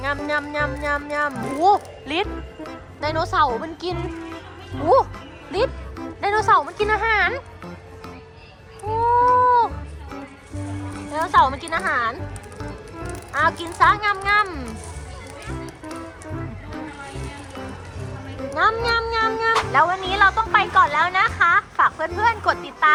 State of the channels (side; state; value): both; identical; correlation 1.00